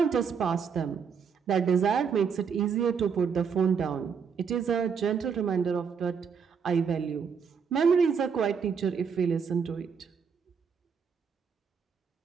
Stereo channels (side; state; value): left; quieter; 6.4 dB